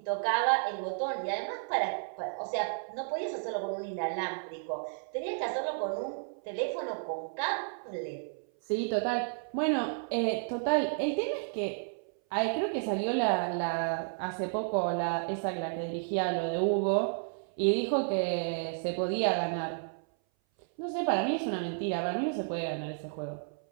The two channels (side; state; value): left; silent; 56 dB below the other